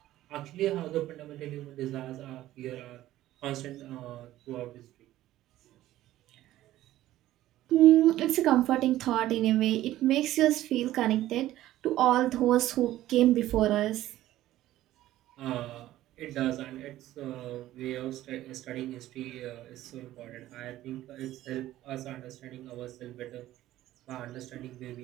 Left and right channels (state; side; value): quieter; left; 14.5 dB